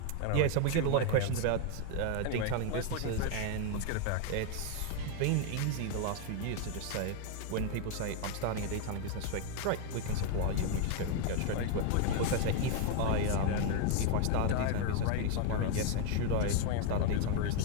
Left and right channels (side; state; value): both; different; correlation 0.00